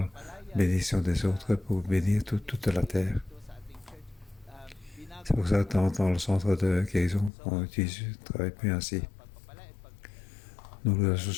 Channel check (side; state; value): right; drops out; at 7.3 s